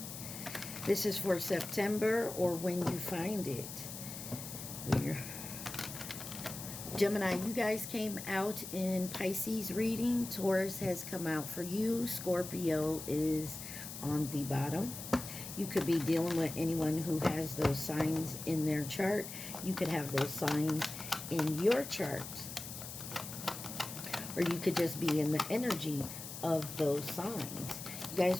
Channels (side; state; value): left; noise; hiss, 9 dB below the sound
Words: This is for September or when you find it. Gemini, you guys came out in Pisces reading. Taurus has come out for you. Scorpio is on the bottom. You could be dealing with anyone who has those signs in their chart. You could have those signs in your chart. Or you could just be in the energy of those signs. You